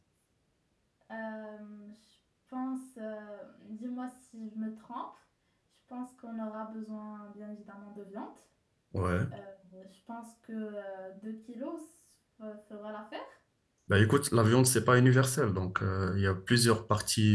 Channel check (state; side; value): identical; both; correlation 1.00